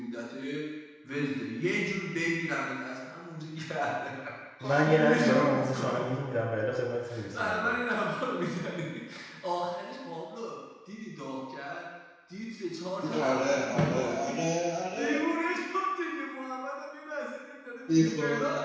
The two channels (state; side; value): identical; both; correlation 1.00